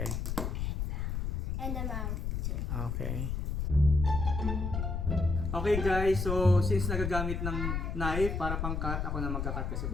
and the mouth too. Okay. Okay guys, so since nagagamit ng knife para pang cut, ako na magka-cut kasi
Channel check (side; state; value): left; noise; rumble, 1 dB below the sound